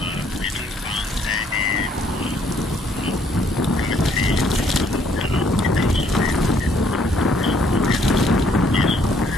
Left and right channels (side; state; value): both; normal; correlation 0.65